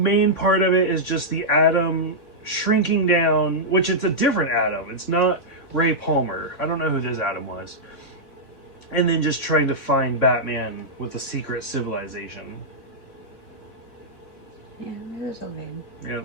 part of it is just the Atom shrinking down, which it's a different Atom. It's not Ray Palmer. I don't know who this Atom was. And then just trying to find Batman with a secret civilization. Yeah, it was okay. Yeah,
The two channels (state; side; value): late; right; 3.6 ms